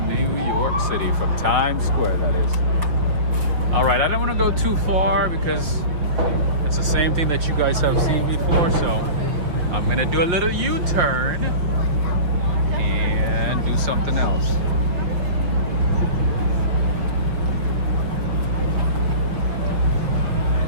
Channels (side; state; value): left; late; 5.9 ms